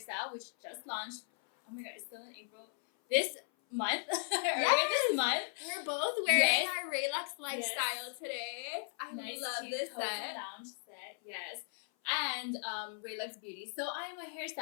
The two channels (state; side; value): silent; right; 53 dB below the other